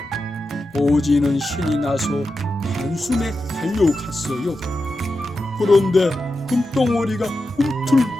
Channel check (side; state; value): both; normal; correlation 0.90